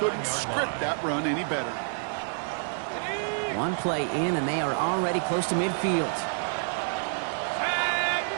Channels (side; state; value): left; silent; 59 dB below the other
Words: script that run any better. One play in, and they are already close to midfield.